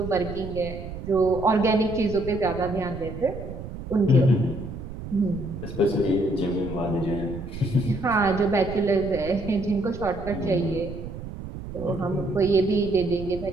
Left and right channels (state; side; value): noise; right; rumble, 10 dB below the sound